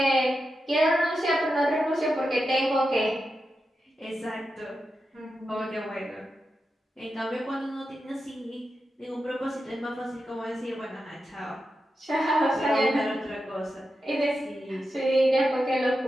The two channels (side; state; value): both; normal; correlation 0.89